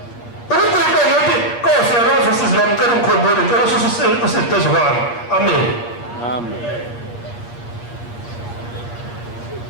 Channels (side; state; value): right; late; 8.5 ms